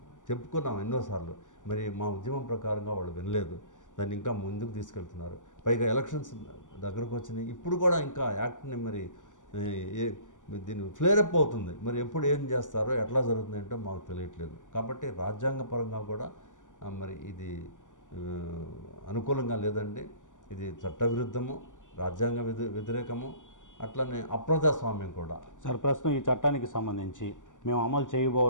చెప్పుకున్నాము ఎన్నోసార్లు. మరి మా ఉద్యమం ప్రకారంగా వాళ్ళు వినలేదు, దాన్ని ఇంకా ముందుకు తీసుకెళ్తున్నారు. పైగా ఎలక్షన్స్ దగ్గరకు వచ్చినాయి, ఇప్పుడు కూడా ఇంకా యాక్ట్ని మరి దీన్ని ఫ్లేరప్ అవుతుంది. మరి ఎప్పుడు ఏం చేస్తారో ఎట్లా జరుగుతుంది అంటే మాకు తెలియట్లేదు. కాబట్టి రాజ్యాంగపరంగా కూడా మరి ఇది అనుకూలంగా లేదండి. ఇది చట్టవిరుద్ధము, రాజ్యాంగ వ్యతిరేకము, అట్లనే అప్రజాస్వామ్యం కూడా. సార్, ప్రస్తుతం ఈ చట్టానికి సంబంధించి మేము అమలు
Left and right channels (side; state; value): right; late; 0.87 ms